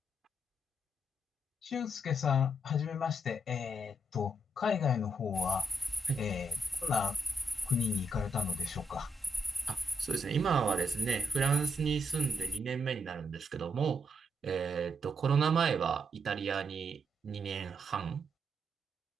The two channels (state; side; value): normal; both; correlation 0.79